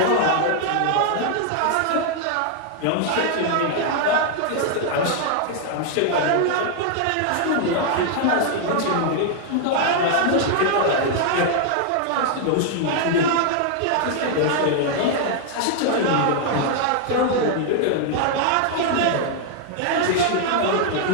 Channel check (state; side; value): different; both; correlation 0.00